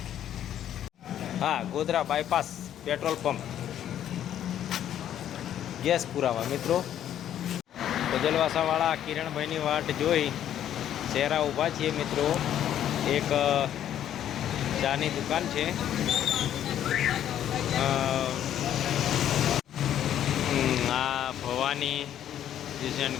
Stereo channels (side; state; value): right; quieter; 10.8 dB